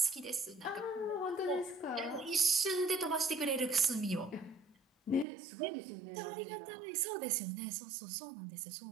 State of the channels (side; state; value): left; drops out; at 5.2 s